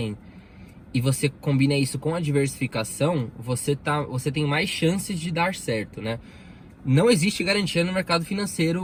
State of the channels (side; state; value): both; identical; correlation 1.00